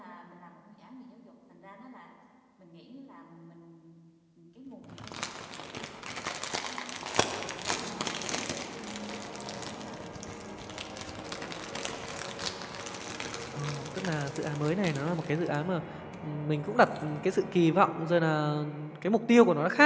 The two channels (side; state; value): both; identical; correlation 1.00